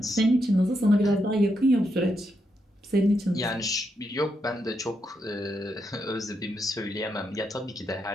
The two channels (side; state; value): both; normal; correlation 0.82